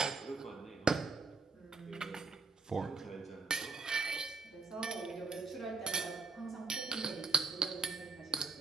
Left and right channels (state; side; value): quieter; left; 4.2 dB